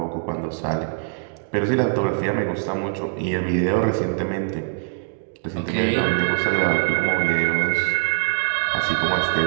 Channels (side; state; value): left; silent; digital silence